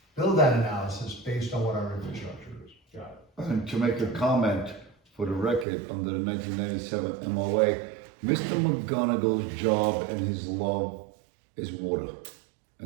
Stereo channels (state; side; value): drops out; left; at 5.7 s